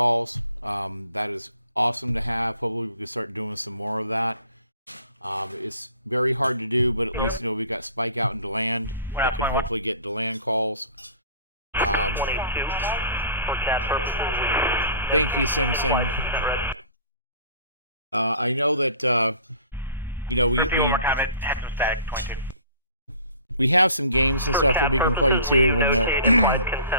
That is awesome to have. Hopefully we can start doing some more of that. It's very hard to do, but at least we got Spike out in DeLand. I can hopefully get DeLand calls. 22 for CAD purposes. Thank you, Simpson. I know that we one more comment. Had some static. 22. We have some games and stuff that we can play too. When implied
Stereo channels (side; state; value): both; inverted; correlation -0.48